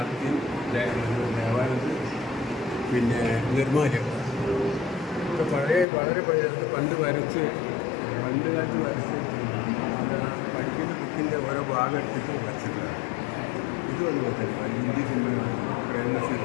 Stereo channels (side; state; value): right; drops out; at 5.9 s